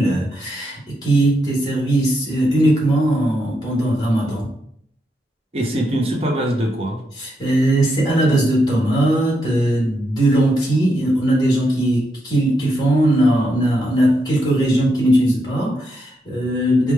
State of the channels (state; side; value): normal; both; correlation 0.81